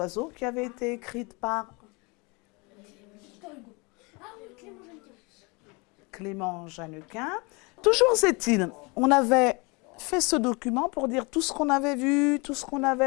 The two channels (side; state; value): right; quieter; 28.3 dB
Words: qui avait été écrite par Clément Jeannequin. Toujours est-il, on avait fait ce document pour dire tout ce qu'on avait vu, tout ce qu'on